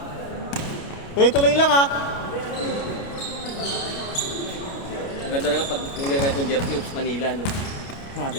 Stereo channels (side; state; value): right; late; 29 ms